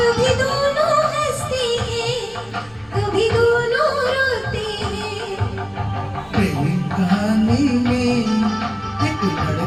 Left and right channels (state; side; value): noise; right; hum, 28 dB below the sound